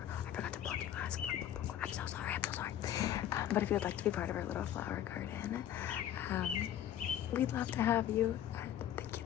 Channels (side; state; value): right; quieter; 11.2 dB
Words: I forgot to plug you guys. I'm so sorry. But if you'd like to be part of our little flower garden, we'd love to have you. Thank